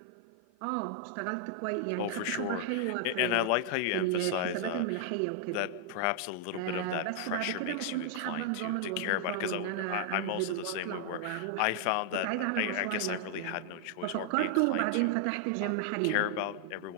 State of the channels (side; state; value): both; different; correlation 0.00